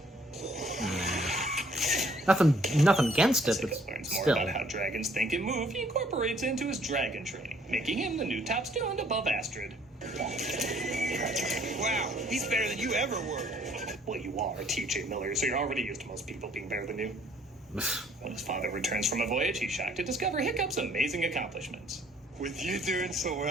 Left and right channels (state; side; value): normal; both; correlation 0.61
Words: Nothing against it, but Hiccup learns more still. about how dragons think and move. He incorporates into his dragon training, making him the new top student above Astrid. Wow, he's better than you ever were. Well, you are T.J. Miller, so you're already used to most people being better than you. When his father returns from a voyage, he's shocked to discover Hiccup's amazing accomplishments. With you doing so